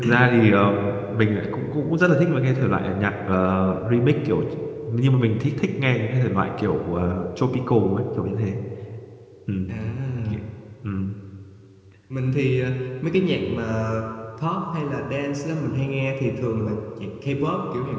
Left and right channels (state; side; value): identical; both; correlation 1.00